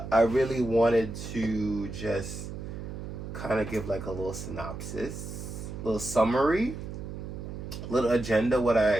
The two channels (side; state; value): right; noise; hum, 8 dB below the sound